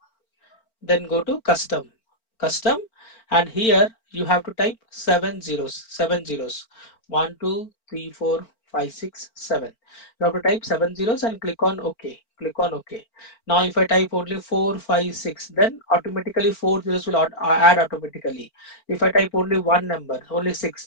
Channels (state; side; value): late; right; 4.4 ms